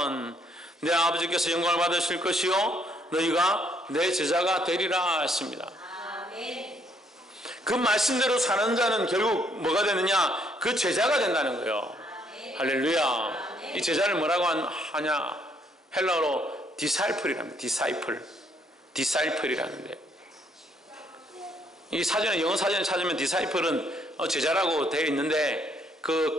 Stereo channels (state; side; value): normal; both; correlation 0.69